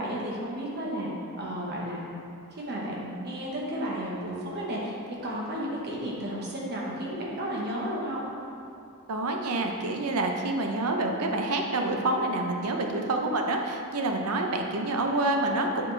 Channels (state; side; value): normal; both; correlation 0.06